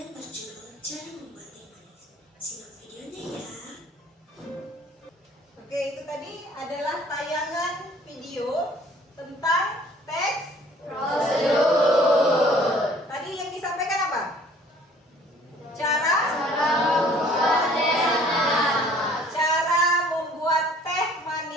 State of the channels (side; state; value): both; normal; correlation 0.55